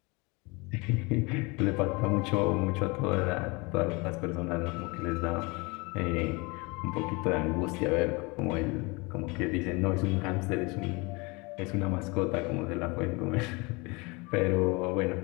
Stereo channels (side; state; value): right; quieter; 27.1 dB